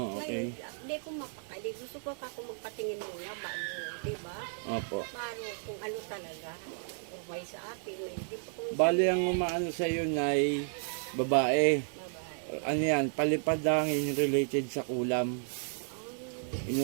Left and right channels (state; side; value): silent; left; 56 dB below the other